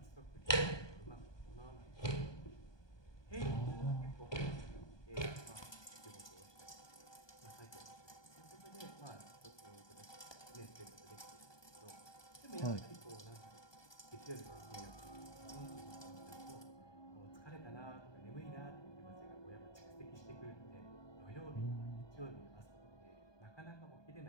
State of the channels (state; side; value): late; right; 1.2 ms